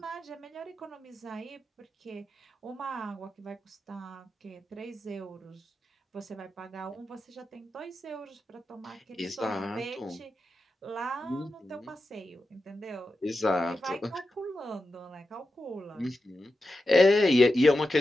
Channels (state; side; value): normal; both; correlation 0.90